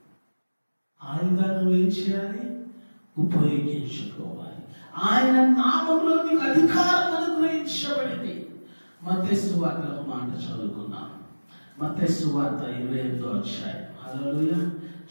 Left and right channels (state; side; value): inverted; both; correlation -1.00